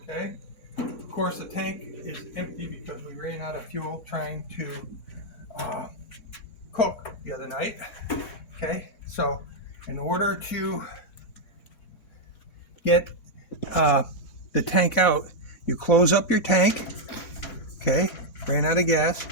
Okay. Of course, the tank is empty because we ran out of fuel trying to cook the other night. Okay, so in order to get the tank out, you close up your tank. Okay, ran out of gas,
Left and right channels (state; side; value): late; right; 3.6 ms